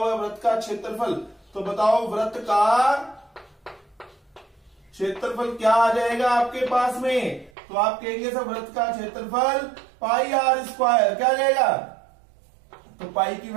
है वृत्त का क्षेत्रफल। तो बताओ वृत्त का क्षेत्रफल क्या आ जाएगा आपके पास में। तो आप कहेंगे सर वृत्त का क्षेत्रफल पाई r स्क्वायर। क्या आ जाएगा, तो पाई की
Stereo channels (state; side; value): drops out; left; at 7.5 s